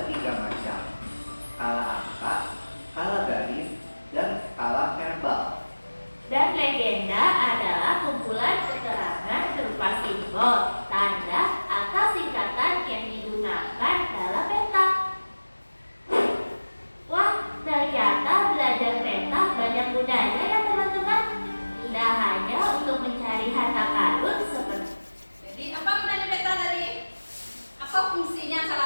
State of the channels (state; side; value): inverted; both; correlation -1.00